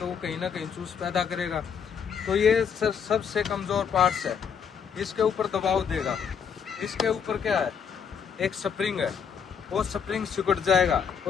वो कहीं ना कहीं चूस पैदा करेगा। तो ये सबसे कमजोर पार्ट्स है, इसके ऊपर दबाव देगा। इसके ऊपर क्या है, एक स्प्रिंग है, वो स्प्रिंग सिकुड़ जाएगा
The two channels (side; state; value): right; quieter; 7.1 dB